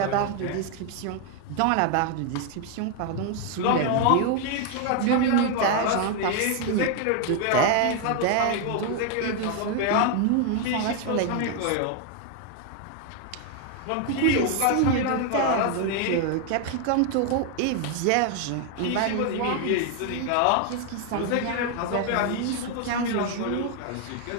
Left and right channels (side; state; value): both; different; correlation 0.01